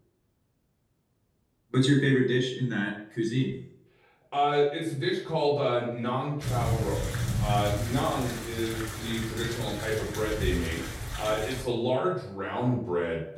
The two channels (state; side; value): identical; both; correlation 1.00